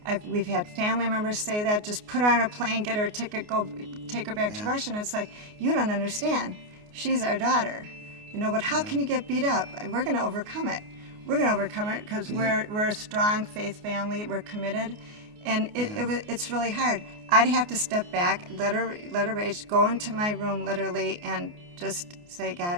We've had family members say that, just put her on a plane, get her a ticket, go take her back to Russia. And it's like, you don't understand. She's our daughter. But how can you get beat up? We're going to overcome it. We're going to overcome it because we're a strong faith family. We're committed. And it's really hard. I'd have to step back, let her rage, go into my room literally, and just say,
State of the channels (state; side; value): late; left; 29 ms